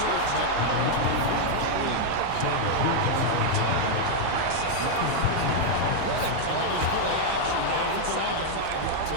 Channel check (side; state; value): both; different; correlation 0.00